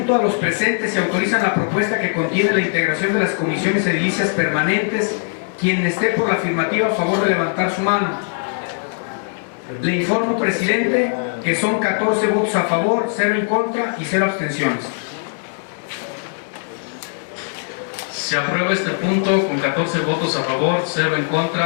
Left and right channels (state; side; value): silent; right; digital silence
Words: a los presentes si autorizan la propuesta que contiene la integración de las comisiones edilicias permanentes. Quien esté por la afirmativa, a favor de levantar su mano. Le informo, presidente, que son 14 votos a favor, 0 en contra y 0 abstenciones. Se aprueba este punto con 14 votos a favor, 0 en